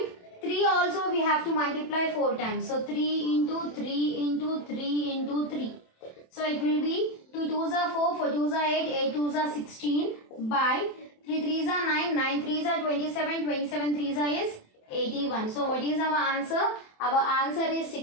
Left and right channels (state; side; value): late; right; 27 ms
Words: 3 also we have to multiply 4 times. So 3 into 3 into 3 into 3. So it will be 2 2s are 4, 4 2s are 8, 8 2s are 16 by 3 3s are 9, 9 3s are 27, 27 3s are is 81. So what is our answer? Our answer is